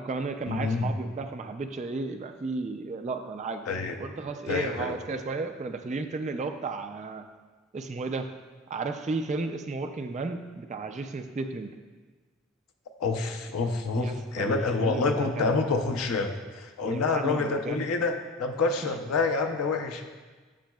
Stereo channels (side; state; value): both; normal; correlation 0.33